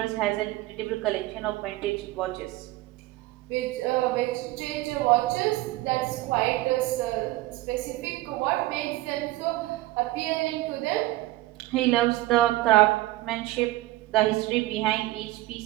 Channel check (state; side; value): quieter; left; 17.9 dB